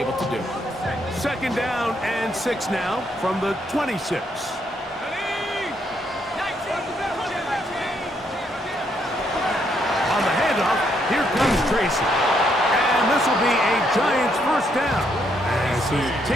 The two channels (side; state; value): both; normal; correlation 0.74